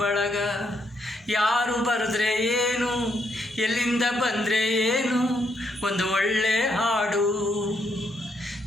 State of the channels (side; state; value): both; normal; correlation 0.75